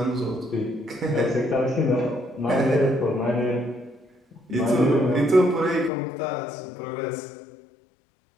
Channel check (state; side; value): drops out; right; at 5.9 s